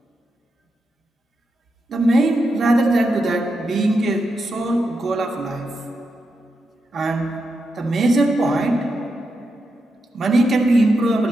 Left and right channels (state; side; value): normal; both; correlation 0.86